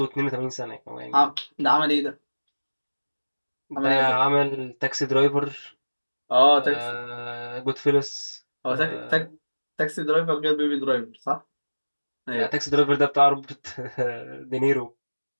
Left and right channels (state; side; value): inverted; both; correlation -1.00